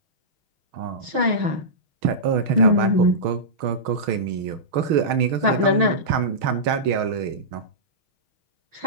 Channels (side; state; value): left; late; 6.3 ms